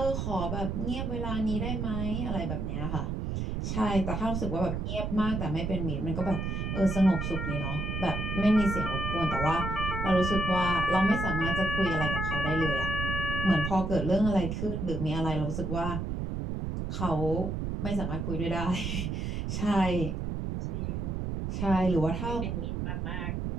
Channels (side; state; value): right; noise; rumble, 2 dB below the sound